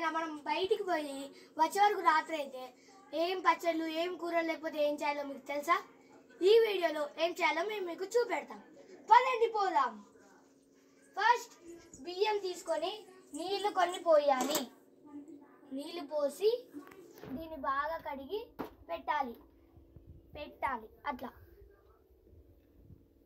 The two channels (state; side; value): identical; both; correlation 1.00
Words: మనం బయటికి పోయి వచ్చే వరకు రాత్రి అయితే ఏం పచ్చళ్ళు ఏం కూరలు లేకపోతే ఏం చేయాలో మీకు తెలుసా? ఈ వీడియోలో ఏం చేయాలో మేము మీకు చూపెడతాం. పదండి పోదాం. ఫస్ట్ బియ్యం తీసుకొని నీళ్లు కొన్ని పోయాలి. నీళ్లు పోసి దీన్ని బాగా కడిగి పెట్టాలి అట్లా.